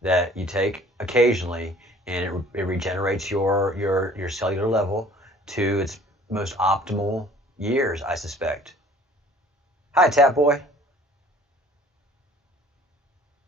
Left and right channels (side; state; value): both; normal; correlation 0.52